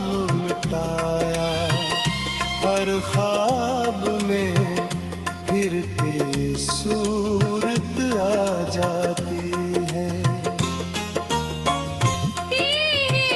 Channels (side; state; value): both; identical; correlation 1.00